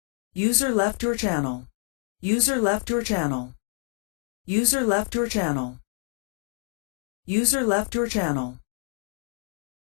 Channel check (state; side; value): quieter; right; 37.6 dB